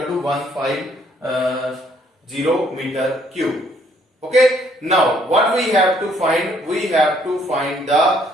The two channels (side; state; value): both; normal; correlation 0.66